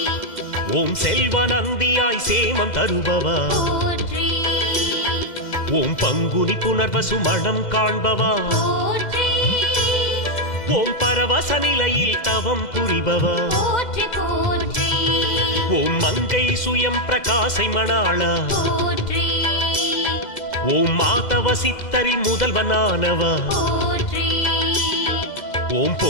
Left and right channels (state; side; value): late; right; 2.0 ms